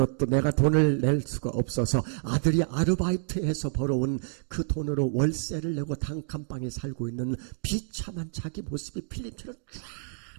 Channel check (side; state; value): left; silent; digital silence